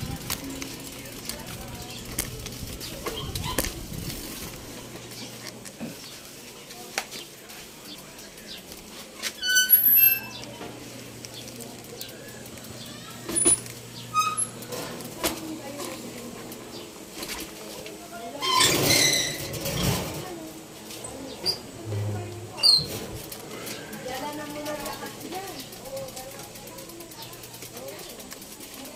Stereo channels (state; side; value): identical; both; correlation 1.00